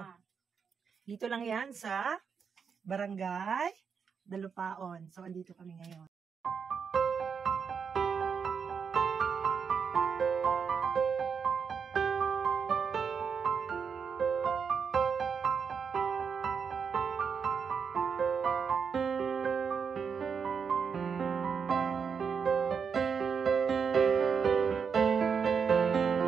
Dito lang yan sa Barangay Dalupaon. So, andito kami ngayon.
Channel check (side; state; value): left; quieter; 6.3 dB